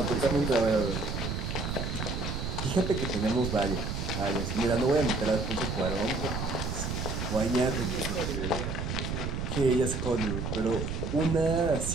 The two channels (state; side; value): noise; right; rumble, 3 dB below the sound